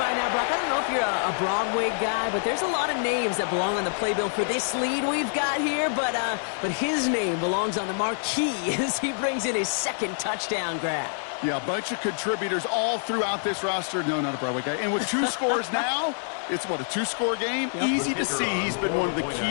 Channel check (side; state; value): right; silent; digital silence